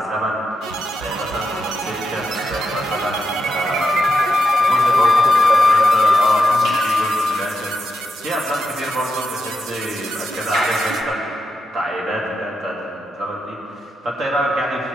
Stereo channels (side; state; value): both; normal; correlation 0.85